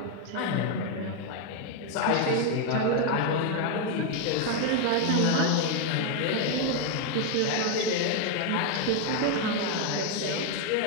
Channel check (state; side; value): different; both; correlation 0.01